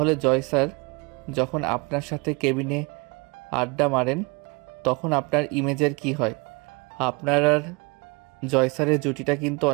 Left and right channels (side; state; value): left; quieter; 28.6 dB